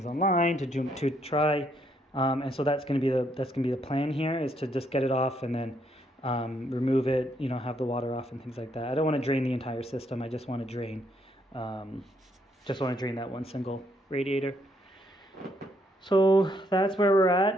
online to try, and so that's gonna be the plan here, is to just get it off and then remove it. Have the water off and things like that. I don't want to drain the entire system. I just want to drain that one single radiator. So that's where we're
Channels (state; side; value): normal; both; correlation 0.73